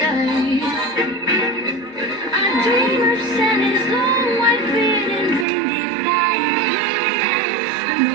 I dream of Santa's long white beard and reindeer flying. I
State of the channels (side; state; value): left; drops out; at 5.5 s